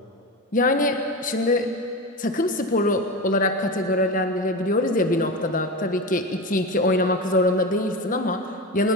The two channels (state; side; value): normal; both; correlation 0.22